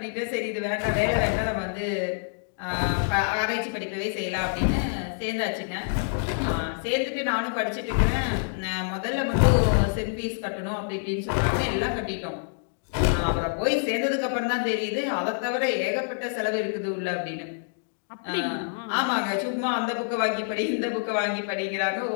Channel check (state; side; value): silent; right; digital silence